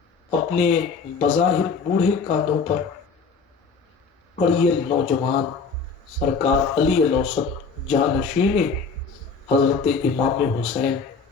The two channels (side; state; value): right; quieter; 5.0 dB